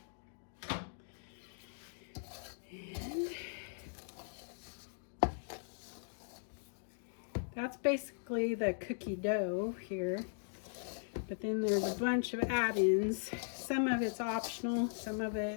And that's basically the cookie dough here. But then there's a bunch of add-ins. Some of it's optional, some of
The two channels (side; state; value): right; silent; digital silence